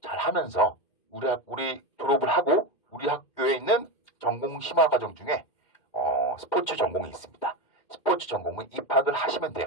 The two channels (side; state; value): right; late; 2.1 ms